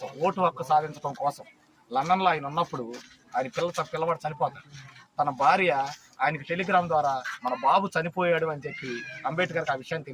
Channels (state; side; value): identical; both; correlation 1.00